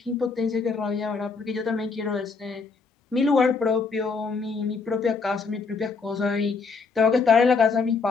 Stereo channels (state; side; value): quieter; right; 4.7 dB